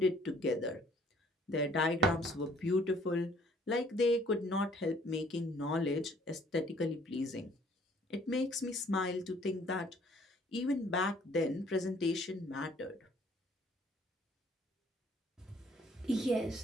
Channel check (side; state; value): both; normal; correlation 0.59